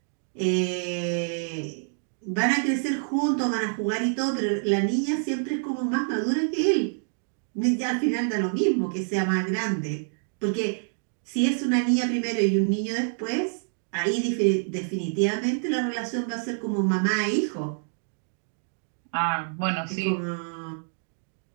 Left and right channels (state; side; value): silent; left; digital silence